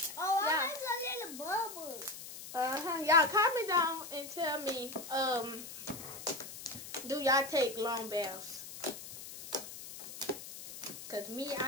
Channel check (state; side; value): noise; left; hiss, 12 dB below the sound